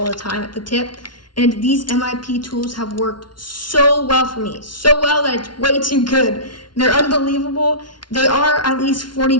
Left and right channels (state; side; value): late; right; 0.71 ms